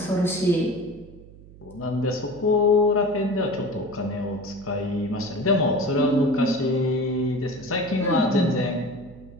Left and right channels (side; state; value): right; noise; hum, 20 dB below the sound